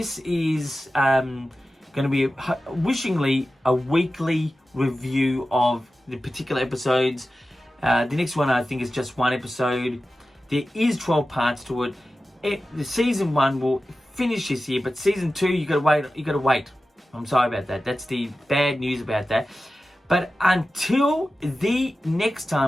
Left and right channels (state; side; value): normal; both; correlation 0.94